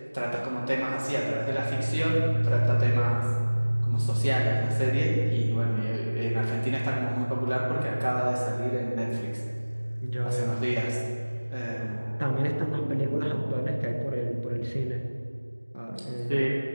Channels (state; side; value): inverted; both; correlation -1.00